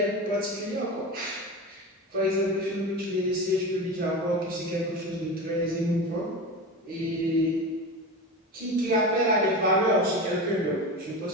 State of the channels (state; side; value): normal; both; correlation 0.26